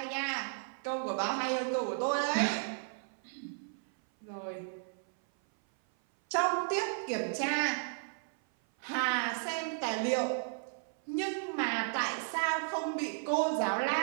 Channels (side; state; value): left; silent; 55 dB below the other